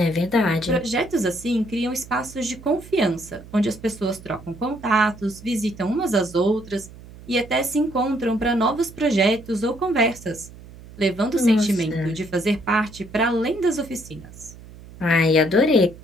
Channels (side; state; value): right; noise; hum, 18 dB below the sound